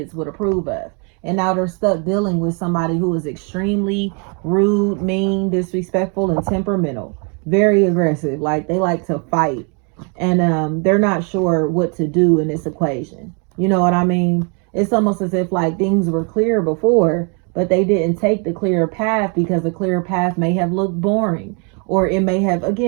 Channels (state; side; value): quieter; left; 36.4 dB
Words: would approve of. And now they're stuck dealing with somebody who is extremely rude, mean, disrespectful, and temperamental. Very aggressive. Like, they like to fight. And they're not sure what to do in this equation. You know what I mean? It's almost as if like things were clear before, but they didn't take the clear path because the clear path may have looked boring, or it may have,